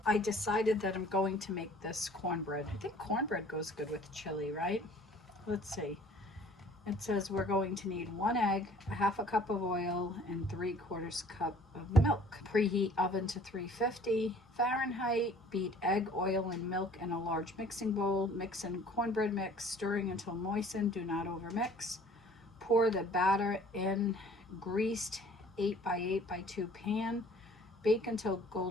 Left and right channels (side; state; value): both; normal; correlation 0.52